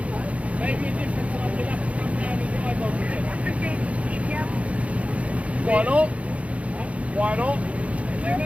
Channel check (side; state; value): left; late; 0.065 ms